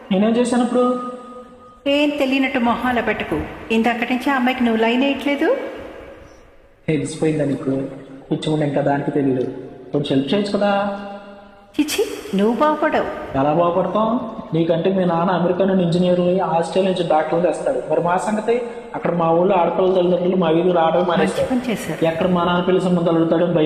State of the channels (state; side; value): identical; both; correlation 1.00